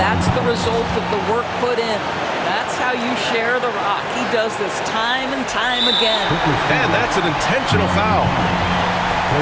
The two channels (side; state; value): both; identical; correlation 1.00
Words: the result of the work put in. That's how you share the rock. He does this time and time again. And that's an intentional foul.